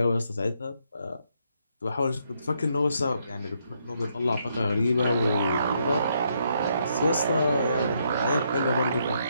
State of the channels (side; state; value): both; inverted; correlation -0.75